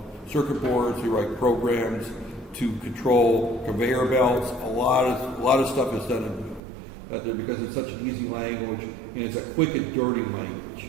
circuit boards. They write programs to control conveyor belts. A lot of stuff is done out there because it's such an easy language and it's a quick and dirty language.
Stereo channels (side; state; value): left; drops out; at 6.6 s